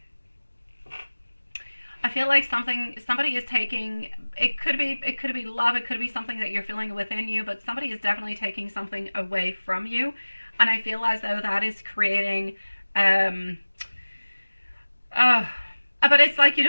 I feel like somebody is taking, it could be love, it could be something that you're feeling within you, but somebody is definitely taking something away from you. And I feel as though that is creating but it's like you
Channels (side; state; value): both; inverted; correlation -1.00